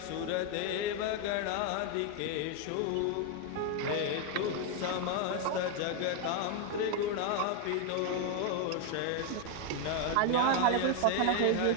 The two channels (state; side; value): different; both; correlation 0.01